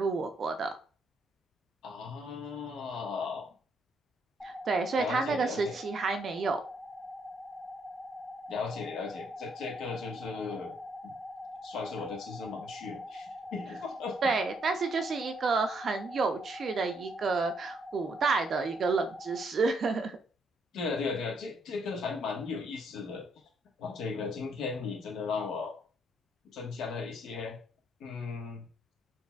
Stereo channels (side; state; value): both; normal; correlation 0.72